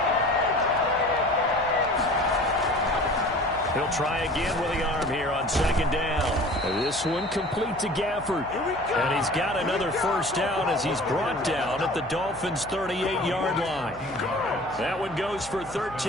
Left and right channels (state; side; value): noise; left; hum, 20 dB below the sound